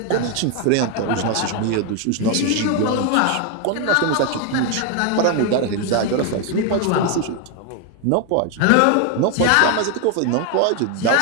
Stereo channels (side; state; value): both; different; correlation 0.01